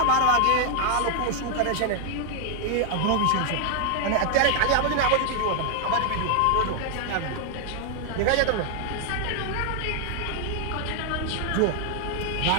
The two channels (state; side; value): different; both; correlation 0.00